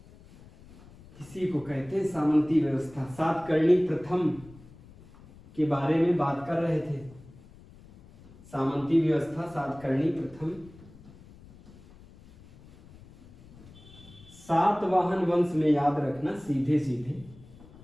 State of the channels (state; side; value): noise; left; rumble, 22 dB below the sound